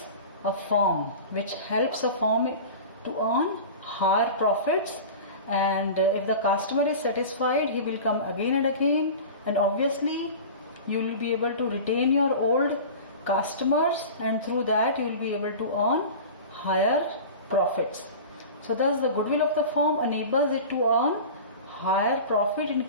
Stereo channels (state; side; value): inverted; both; correlation -0.34